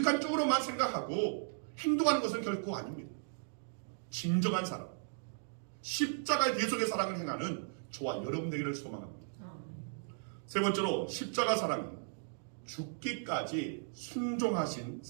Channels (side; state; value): left; silent; digital silence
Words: 쪽으로만 생각하고 행동하는 것은 결코 아닙니다. 진정한 사랑, 십자가의 대속의 사랑을 행하는 저와 여러분 되기를 소망합니다. 세 번째로, 십자가 사랑은 죽기까지 순종하신